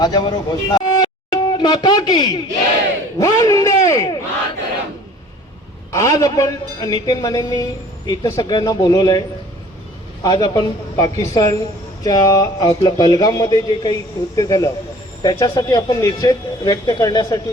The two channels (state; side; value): normal; both; correlation 0.50